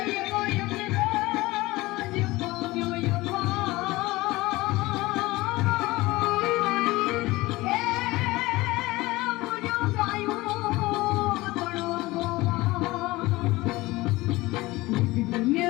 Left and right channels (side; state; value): right; quieter; 20.0 dB